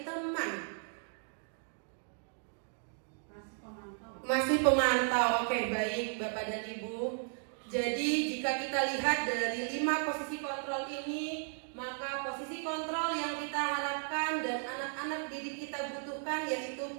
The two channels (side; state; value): left; silent; 54 dB below the other